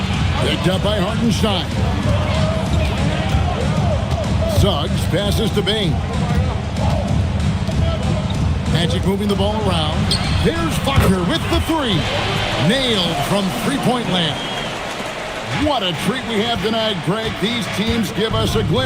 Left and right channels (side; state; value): both; identical; correlation 1.00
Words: Picked up by Hartenstein. Suggs passes to Bane. Magic moving the ball around. There's Wagner with the 3. Nailed from three-point land. What a treat we have tonight, Greg. These teams give us a